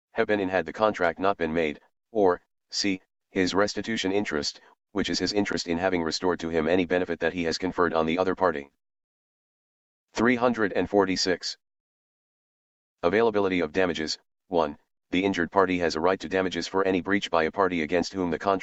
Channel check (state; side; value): identical; both; correlation 1.00